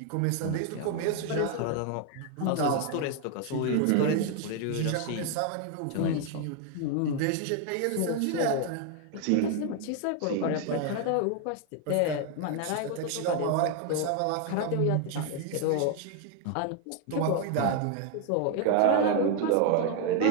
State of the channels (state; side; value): different; both; correlation 0.00